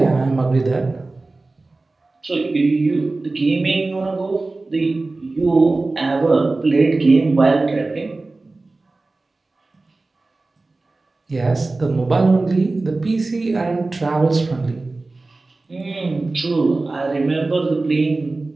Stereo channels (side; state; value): left; quieter; 3.3 dB